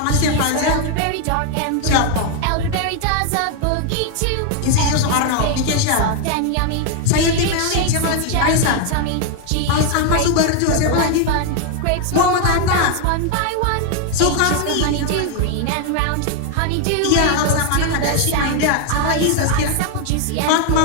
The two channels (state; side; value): different; both; correlation 0.00